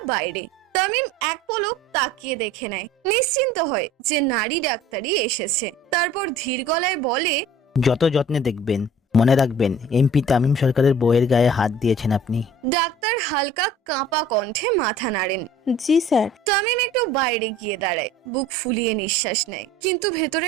বাইরে। তামিম এক পলক তাকিয়ে দেখে নেয়, নিশ্চিন্ত হয় যে নারী ডাক্তারই এসেছে। তারপর ধীর গলায় বলে, যত যত্নে দেখবেন, মনে রাখবেন এমপি তামিম সরকারের বউয়ের গায়ে হাত দিয়েছেন আপনি। ডাক্তার হালকা কাঁপা কণ্ঠে মাথা নাড়েন। জি স্যার। তামিম একটু বাইরে গিয়ে দাঁড়ায়, বুক ফুলিয়ে নিঃশ্বাস নেয়, কিন্তু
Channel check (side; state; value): both; normal; correlation 0.48